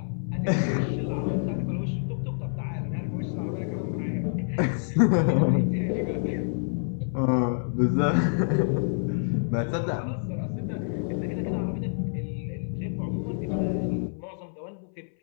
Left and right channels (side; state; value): right; silent; 59 dB below the other